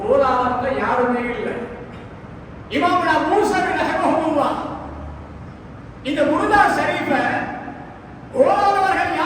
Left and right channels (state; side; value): identical; both; correlation 1.00